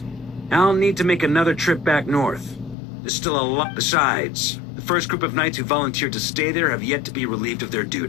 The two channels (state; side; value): drops out; right; at 2.8 s